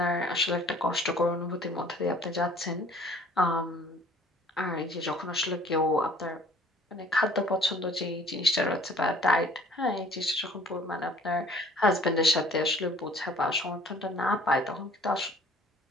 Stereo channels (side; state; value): both; normal; correlation 0.54